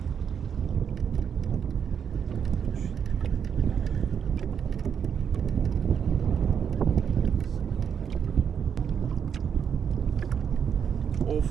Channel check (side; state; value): left; quieter; 7.6 dB